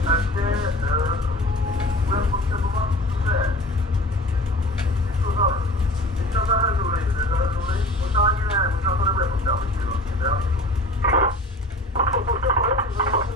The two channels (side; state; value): both; normal; correlation 0.41